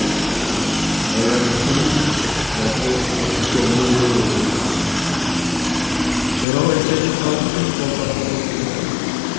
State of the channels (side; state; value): right; drops out; at 6.5 s